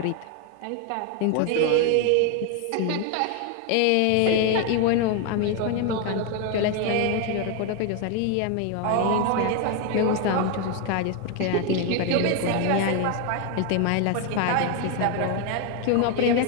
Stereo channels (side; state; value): both; different; correlation 0.01